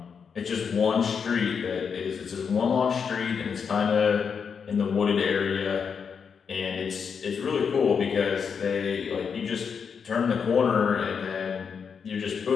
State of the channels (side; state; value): right; quieter; 6.4 dB